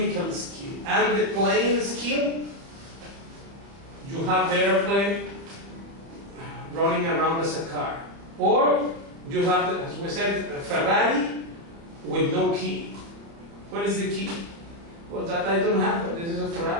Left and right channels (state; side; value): late; left; 30 ms